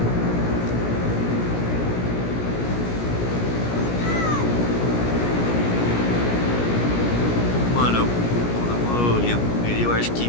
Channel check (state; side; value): late; right; 17 ms